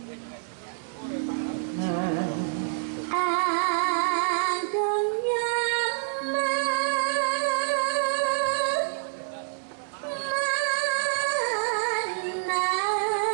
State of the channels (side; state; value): left; silent; 60 dB below the other